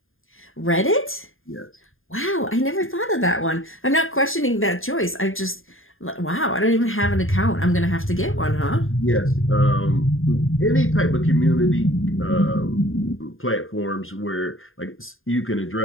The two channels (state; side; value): late; right; 0.60 ms